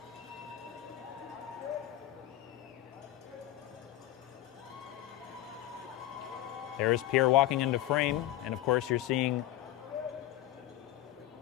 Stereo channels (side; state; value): right; quieter; 14.0 dB